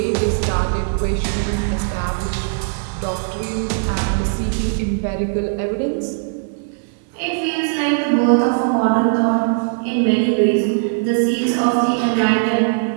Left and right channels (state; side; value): silent; left; 66 dB below the other